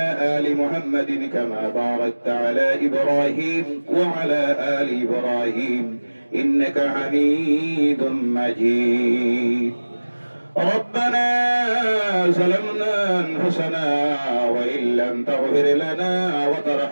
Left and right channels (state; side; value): inverted; both; correlation -1.00